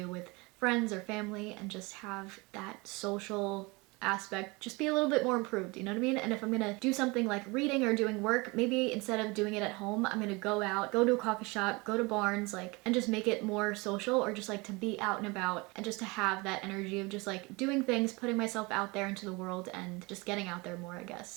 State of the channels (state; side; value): quieter; left; 25.8 dB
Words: with friends or family, and just have that social aspect just be a little bit more improved, you know what I mean? And if I'm gonna do something like reading or doing work, maybe instead of doing it at home, I'm gonna go out, go to a coffee shop, go to Barnes, like, and just make it more social, or just like to be out and about and just to have that energy of just like doing things, putting myself out there into the world and just getting out there more, I